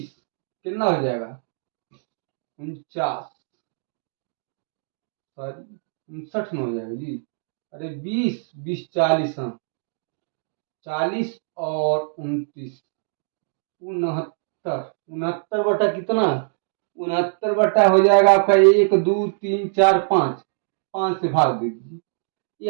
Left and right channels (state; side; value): silent; left; digital silence